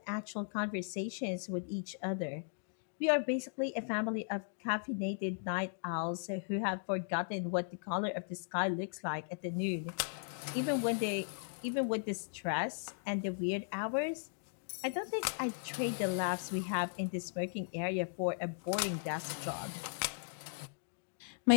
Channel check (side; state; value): right; silent; digital silence